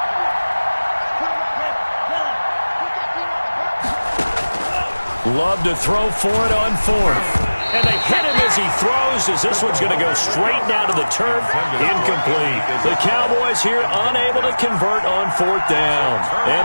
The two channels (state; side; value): inverted; both; correlation -1.00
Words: Love to throw for it on fourth. And they hit him as he throws, as this one's going to go straight down to the turf. Incomplete. The Cowboys here unable to convert on fourth down.